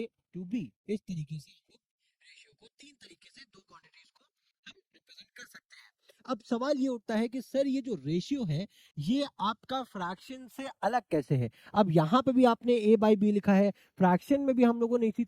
to B. इस तरीके से हम लोग रेशियो को तीन तरीके से दो क्वांटिटीज को हम रिप्रेजेंट कर सकते हैं। अब सवाल ये उठता है कि सर ये जो रेशियो है ये आपका फ्रैक्शन से अलग कैसे है। अब यहाँ पे भी आपने ए बाई बी लिखा है, फ्रैक्शन में भी हम लोगों ने इसी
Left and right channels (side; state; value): both; identical; correlation 1.00